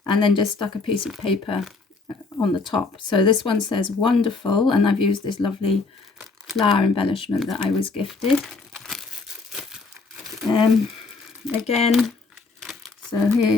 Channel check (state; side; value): quieter; right; 4.0 dB